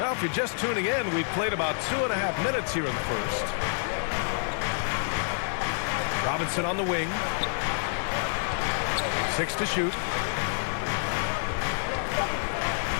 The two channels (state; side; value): silent; right; digital silence